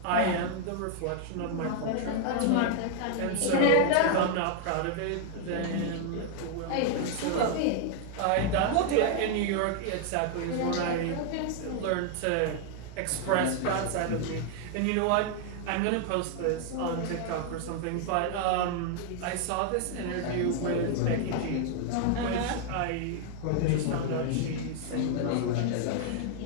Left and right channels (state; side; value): different; both; correlation 0.00